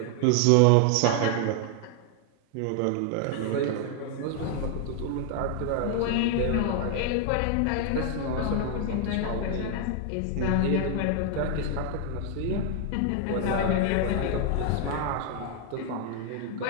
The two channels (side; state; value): both; different; correlation 0.00